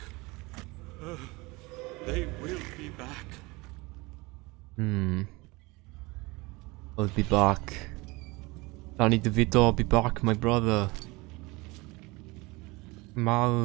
They will be back. I'll be back. Danny DeVito, I'll be back, my brother.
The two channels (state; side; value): quieter; left; 23.9 dB